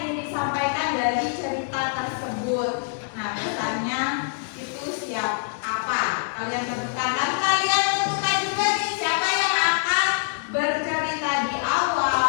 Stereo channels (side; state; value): right; silent; digital silence